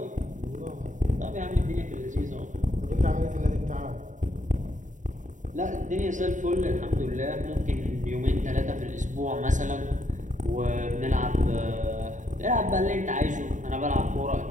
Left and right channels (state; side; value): late; left; 0.36 ms